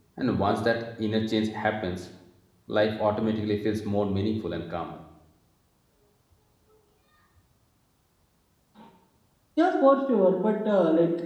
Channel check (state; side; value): identical; both; correlation 1.00